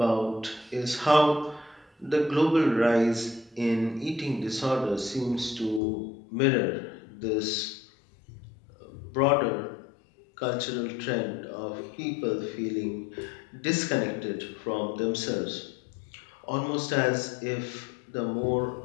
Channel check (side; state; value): right; drops out; at 5.8 s